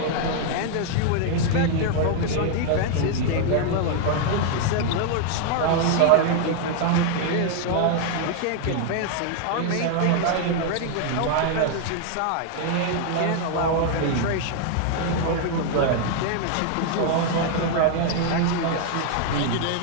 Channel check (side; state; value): both; different; correlation 0.00